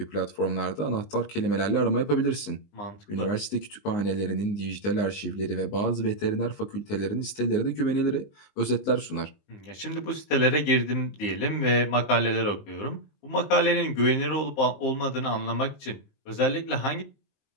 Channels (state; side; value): late; right; 19 ms